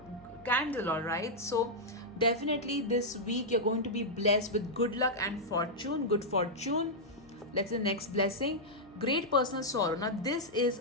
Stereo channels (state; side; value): normal; both; correlation -0.06